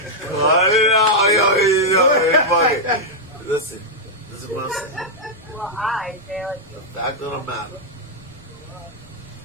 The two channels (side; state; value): right; noise; rumble, 29 dB below the sound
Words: it out. Yo, fuck it. Listen, this is what I'm saying. Well, I feel like The fact of the matter,